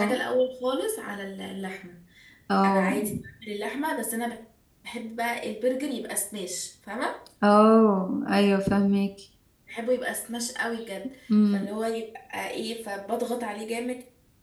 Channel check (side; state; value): both; identical; correlation 1.00